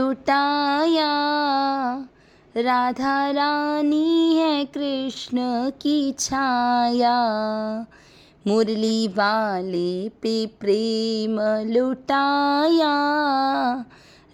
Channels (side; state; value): both; identical; correlation 1.00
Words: राधा रानी है कृष्ण की छाया। मुरली वाले पे प्रेम लुटाया,